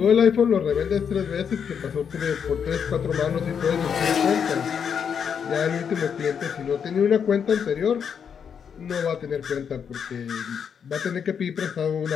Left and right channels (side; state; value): right; quieter; 7.3 dB